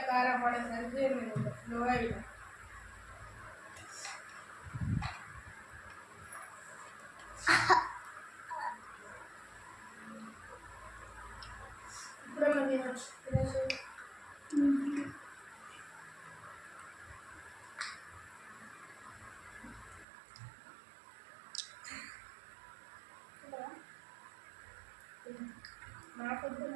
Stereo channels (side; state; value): left; drops out; at 20.1 s